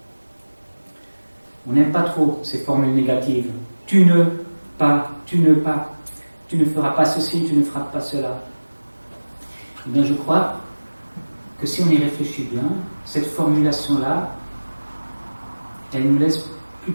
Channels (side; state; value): both; inverted; correlation -1.00